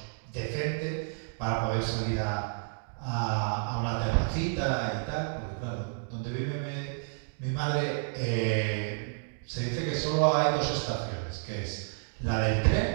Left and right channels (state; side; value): silent; left; digital silence